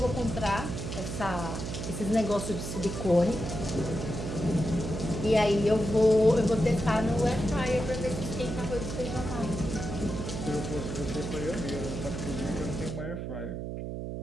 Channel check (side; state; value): right; noise; hum, 5 dB below the sound